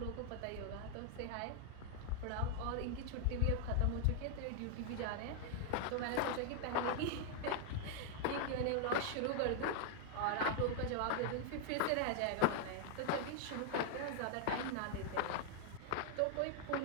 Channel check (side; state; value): both; different; correlation 0.00